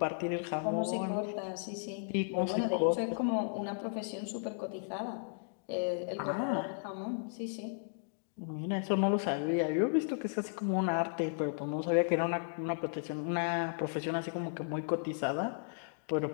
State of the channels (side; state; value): right; silent; digital silence